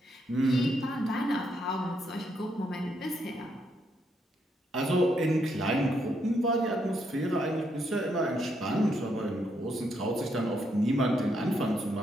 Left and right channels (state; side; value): normal; both; correlation 0.77